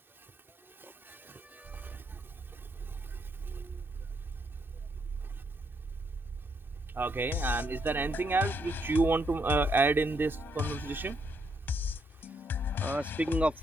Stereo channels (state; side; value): normal; both; correlation 0.75